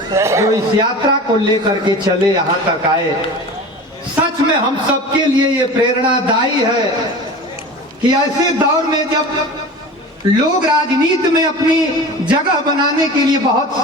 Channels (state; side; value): normal; both; correlation 0.35